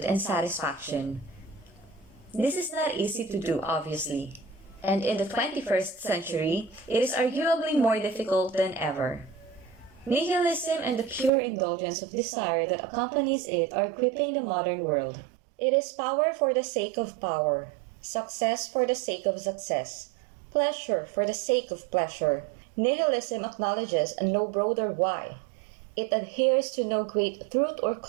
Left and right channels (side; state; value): left; drops out; at 11.3 s